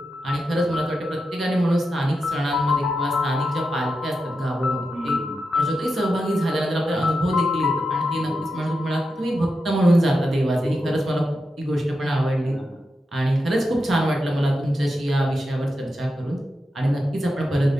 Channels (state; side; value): normal; both; correlation 0.88